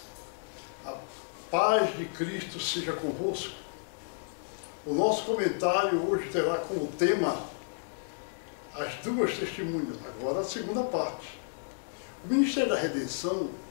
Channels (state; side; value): silent; right; digital silence